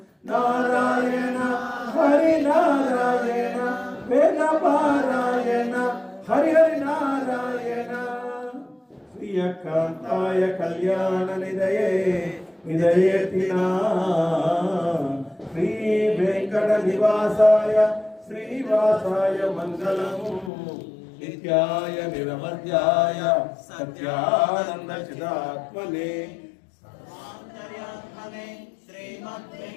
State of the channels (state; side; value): drops out; right; at 20.5 s